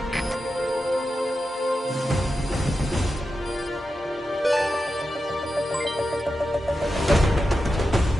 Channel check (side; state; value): both; normal; correlation 0.90